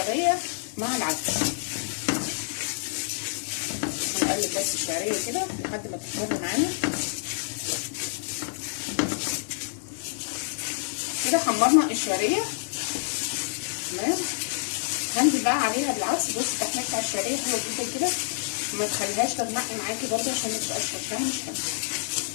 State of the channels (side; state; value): right; silent; digital silence